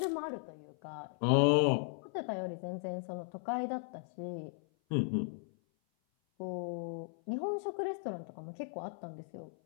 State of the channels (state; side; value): silent; right; 53 dB below the other